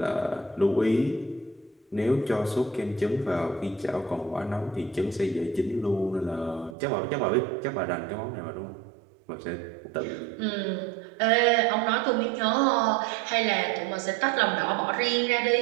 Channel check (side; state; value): left; drops out; at 6.8 s